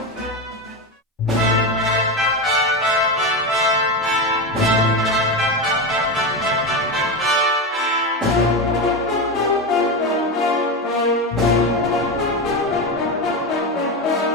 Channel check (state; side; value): normal; both; correlation 0.16